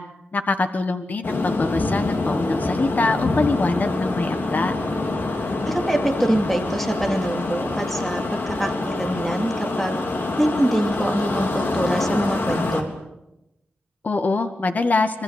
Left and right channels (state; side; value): normal; both; correlation 0.90